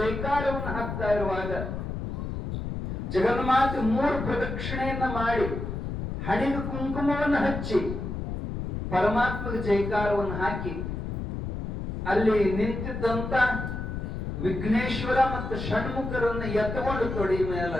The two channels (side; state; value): left; noise; rumble, 5 dB below the sound